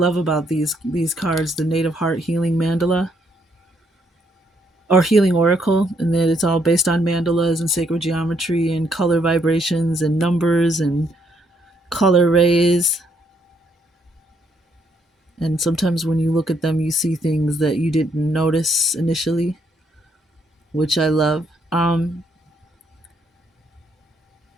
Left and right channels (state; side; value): normal; both; correlation 0.72